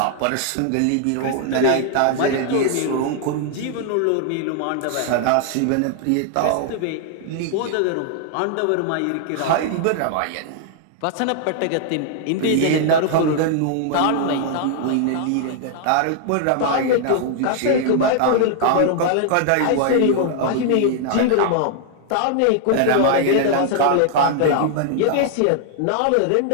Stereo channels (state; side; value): different; both; correlation 0.00